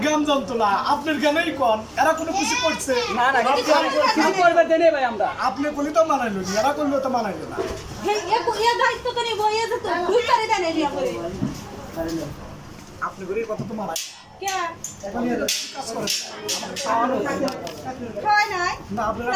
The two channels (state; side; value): identical; both; correlation 1.00